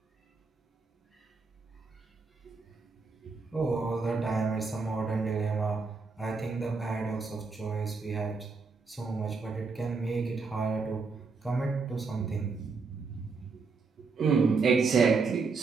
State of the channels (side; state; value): left; quieter; 4.5 dB